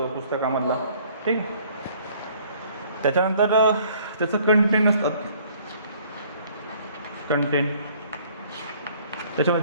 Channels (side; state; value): both; inverted; correlation -0.58